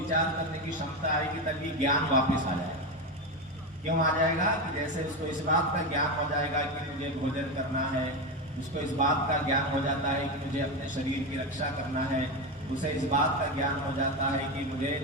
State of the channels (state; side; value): normal; both; correlation 0.15